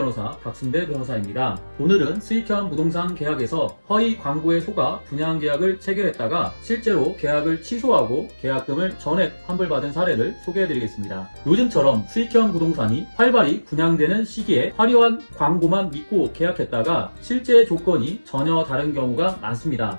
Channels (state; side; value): inverted; both; correlation -1.00